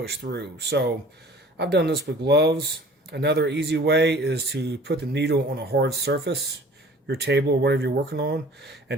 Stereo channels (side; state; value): both; normal; correlation 0.48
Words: through. So I've done this with gloves. Another easy way is to put the needle on a hard surface, your table or whatever you're working on,